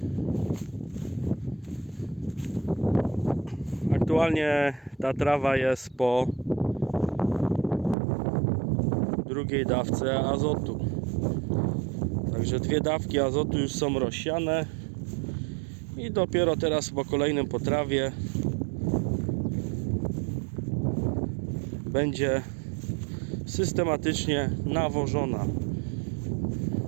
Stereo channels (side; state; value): left; drops out; at 8.0 s